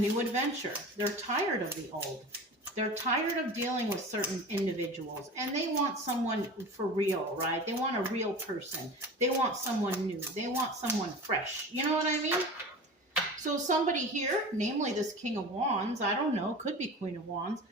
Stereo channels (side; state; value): both; normal; correlation 0.35